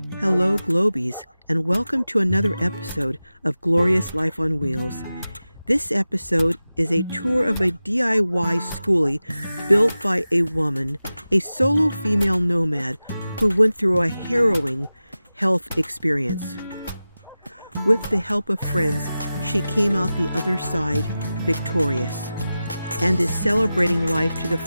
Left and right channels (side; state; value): both; inverted; correlation -0.95